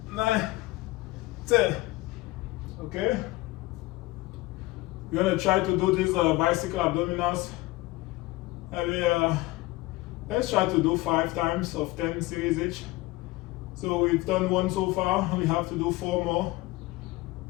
9, 10. Okay? We're gonna try to do these bicycle abdominals. And let's try to do 5 times of 10 series each. So we've done 1 so far, and we have to do 4 more.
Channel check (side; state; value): right; quieter; 19.7 dB